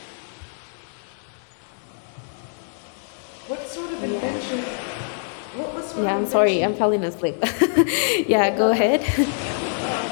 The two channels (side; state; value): right; silent; digital silence